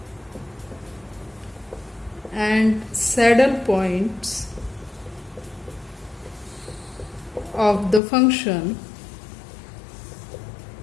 and saddle points of the function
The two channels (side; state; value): right; drops out; at 8.0 s